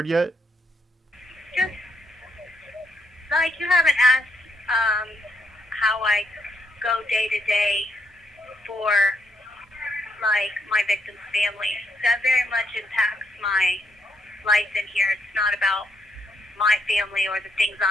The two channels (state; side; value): normal; both; correlation 0.76